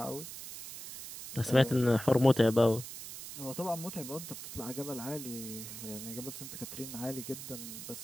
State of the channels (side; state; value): right; noise; hiss, 10 dB below the sound